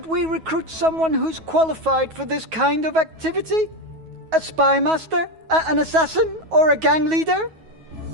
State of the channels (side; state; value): left; late; 9.3 ms